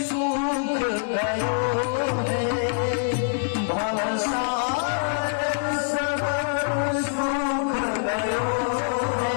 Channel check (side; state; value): right; silent; 62 dB below the other